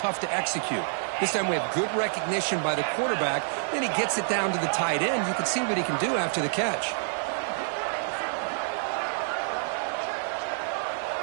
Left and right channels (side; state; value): left; silent; digital silence